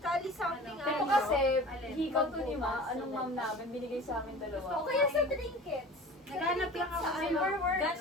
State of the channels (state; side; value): normal; both; correlation 0.39